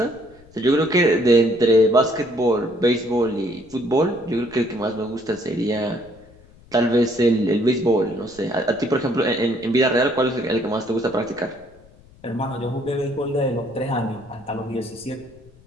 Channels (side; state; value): left; noise; rumble, 26 dB below the sound